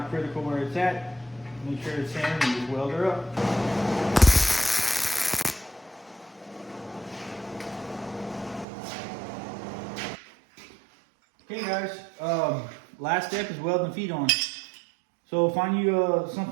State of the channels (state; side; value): drops out; left; at 8.7 s